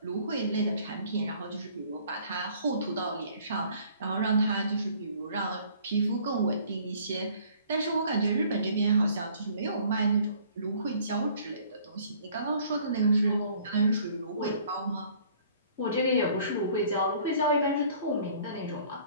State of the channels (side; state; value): both; inverted; correlation -0.55